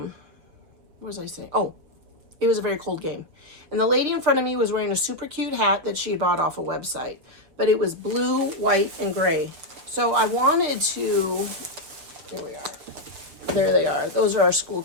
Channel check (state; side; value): late; left; 6.3 ms